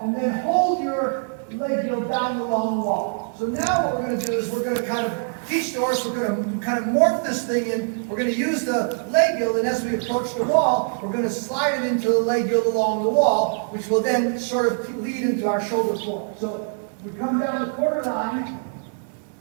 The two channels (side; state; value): left; silent; 63 dB below the other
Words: and then hold your leg heel down along the wall. So now what we're going to do is we're going to kind of teach the horse, we're going to kind of morph this thing in. We're going to use the leg heel, and as we approach the wall, we're going to slide it into the leg heel along the wall, which will then sort of lead into our shoulder form. So we come down the quarter line.